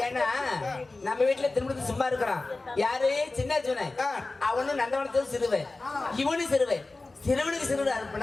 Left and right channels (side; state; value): right; quieter; 3.3 dB